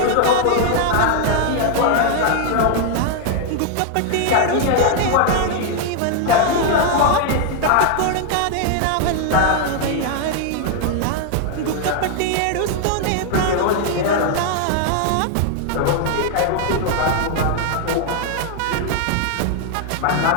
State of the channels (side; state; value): both; different; correlation 0.00